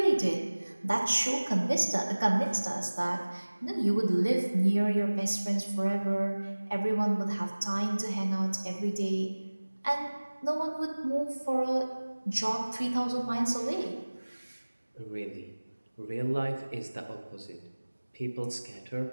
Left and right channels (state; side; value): inverted; both; correlation -1.00